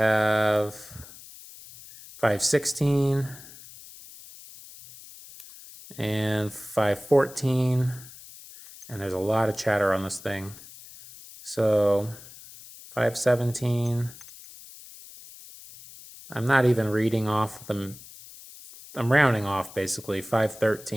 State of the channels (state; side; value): noise; left; hiss, 18 dB below the sound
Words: 516 and 514. And there's a lot of chatter on this thing. So 517. I'm not even reading off them. I'm rounding off basically.